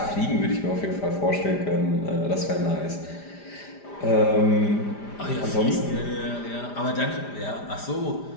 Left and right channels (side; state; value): right; late; 5.0 ms